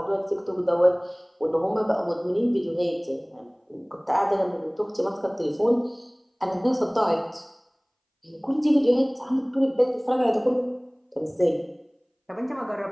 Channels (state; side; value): identical; both; correlation 1.00